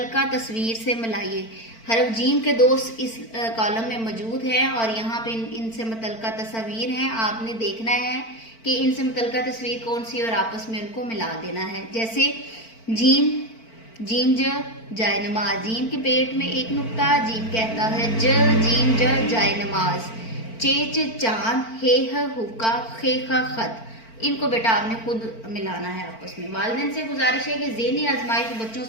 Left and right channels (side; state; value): right; late; 4.4 ms